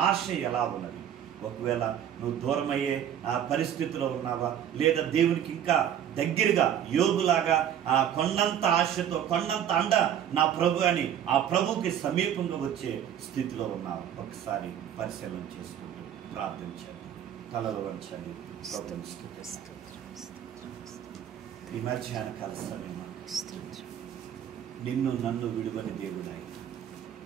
ఆశ ఎలా ఉన్నది? ఒకవేళ నువ్వు దూరమయ్యే ఆ పరిస్థితిలో ఉన్నావా, లేదా దేవునికి ఇంకా దగ్గరగా యోబులాగా ఆ కొండంత ఆశతో, కొండంత అండ నా ప్రభు అని ఆ ప్రభుకి సమీపంగా వచ్చే స్థితిలో ఉన్నావు? ఒకసారి పరిశీలన చేసుకుంటూ ప్రార్థించండి, తలలు వంచండి. ఈ మధ్యాహ్న కాల సమయం నిన్ను నన్ను విడువని దేవుడాయి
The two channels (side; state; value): left; quieter; 9.8 dB